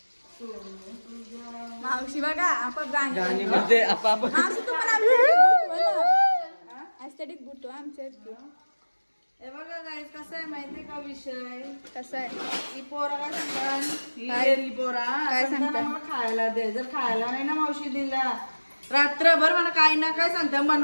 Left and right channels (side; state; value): both; inverted; correlation -1.00